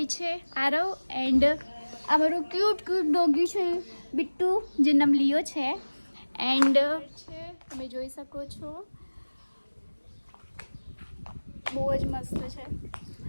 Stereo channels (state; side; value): inverted; both; correlation -1.00